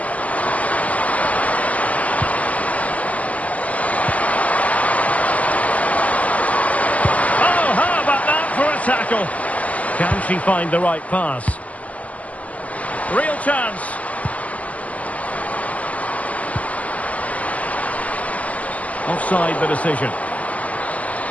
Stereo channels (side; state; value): right; late; 0.072 ms